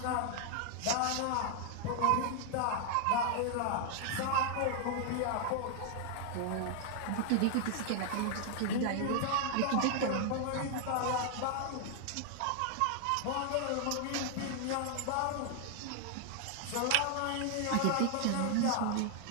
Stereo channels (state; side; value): different; both; correlation 0.00